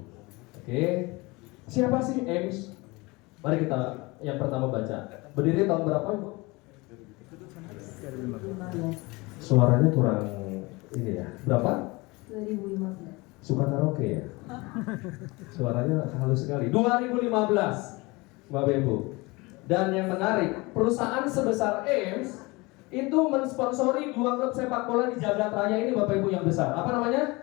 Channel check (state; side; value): quieter; right; 24.2 dB